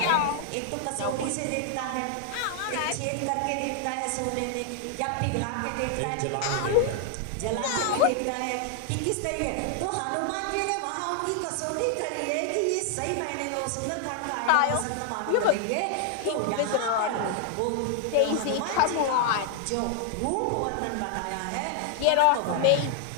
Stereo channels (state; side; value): different; both; correlation 0.00